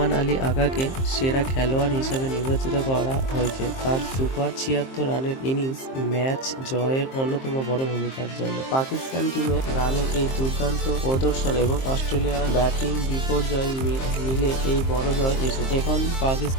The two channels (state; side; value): late; right; 23 ms